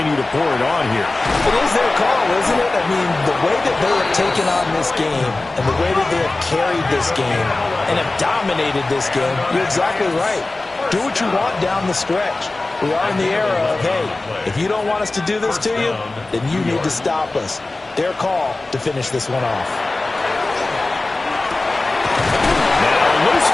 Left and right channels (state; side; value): quieter; right; 3.1 dB